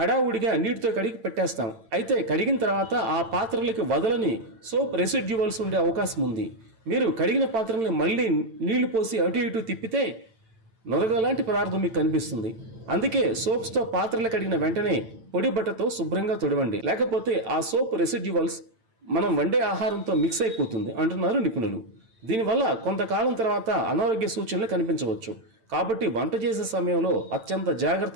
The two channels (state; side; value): late; left; 8.9 ms